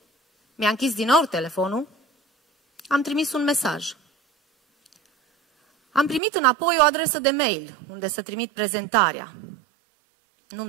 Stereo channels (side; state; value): left; drops out; at 6.2 s